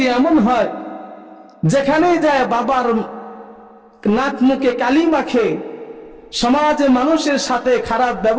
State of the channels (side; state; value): both; identical; correlation 1.00